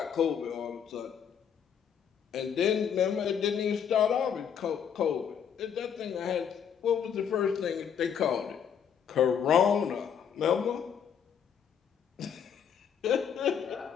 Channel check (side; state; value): right; quieter; 8.0 dB